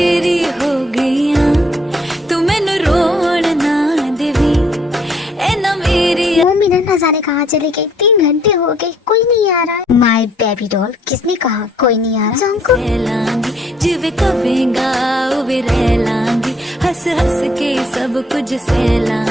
हो गई हां, तू मैनू रोण ना देवी, ए ना मेरी। वो मीना न जाने कहाँ चली गई, 3 घंटे हो गए, कोई नहीं आ रहा है। माय बेबी डॉल, किसने कहा कोई नहीं आ रहा? जंको लांगी जिवे कवेगा उवे रह लांगी, हंस हंस के सब कुछ सह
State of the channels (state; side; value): normal; both; correlation 0.64